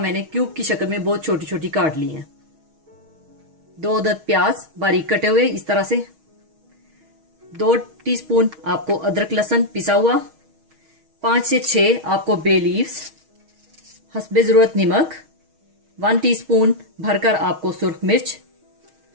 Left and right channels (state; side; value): late; left; 6.3 ms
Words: क्यूब की शक्ल में बहुत छोटी छोटी काट ली हैं। 2 अदद प्याज बारीक कटे हुए इस तरह से। 2 टीस्पून आपको अदरक लहसुन पिसा हुआ। 5 से 6 आपको बे लीव्स। हस्बे जरूरत नमक। 1 टीस्पून भरकर आपको सुर्ख मिर्च